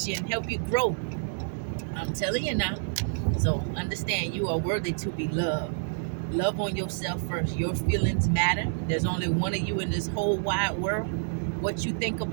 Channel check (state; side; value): silent; left; digital silence